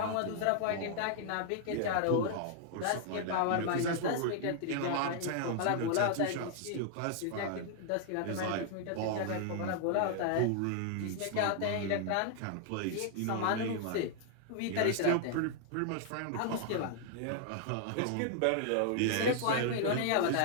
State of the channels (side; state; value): both; different; correlation 0.00